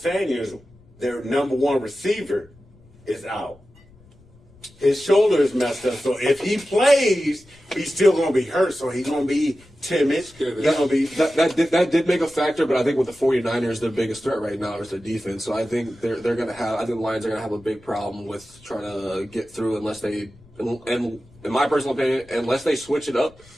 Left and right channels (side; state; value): left; noise; rumble, 27 dB below the sound